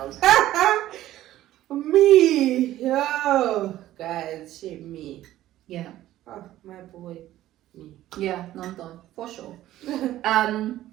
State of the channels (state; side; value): quieter; left; 14.1 dB